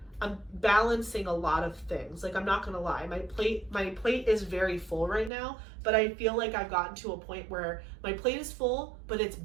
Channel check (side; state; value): left; drops out; at 5.3 s